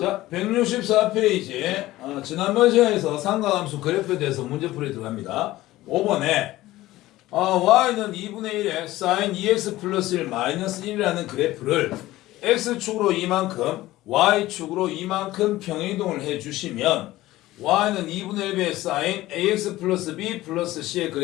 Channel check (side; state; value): right; quieter; 16.7 dB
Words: 164페이지. 지난번 시간에서 삼각함수 그래프에 대해서 문제풀이 들어갑니다. 5번에 y는 2분의 1에 sin 2x 플러스 1 마이너스 1이라는 그래프를 x축으로 이만큼, y축으로 이만큼 평행이동을 해주시면 y는 2분의 1의 sin ax 플러스 b 플러스 c의